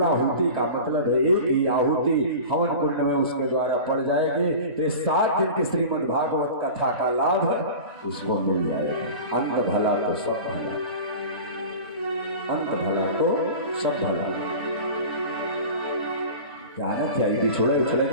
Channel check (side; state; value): both; inverted; correlation -0.35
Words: आहुति का मतलब है एक ही आहुति हवन कुंड में उसके द्वारा पड़ जाएंगे तो 7 दिन की श्रीमद् भागवत कथा का लाभ उसको मिल जाएगा। अंत भला तो सब भला, अंत भला तो सब भला। क्या बिछोड़े उछड़े